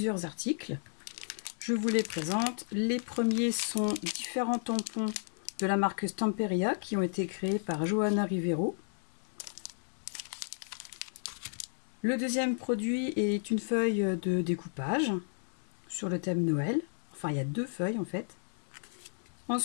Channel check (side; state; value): right; silent; 56 dB below the other